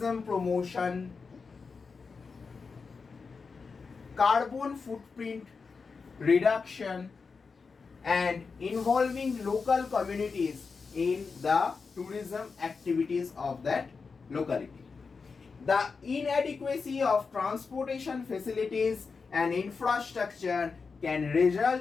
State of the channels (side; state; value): right; quieter; 4.9 dB